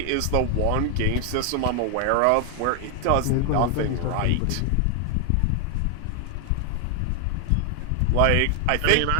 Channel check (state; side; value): different; both; correlation 0.00